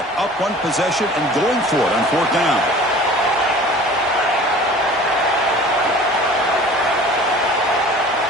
up one possession and going for it on fourth down.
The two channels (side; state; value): both; normal; correlation 0.44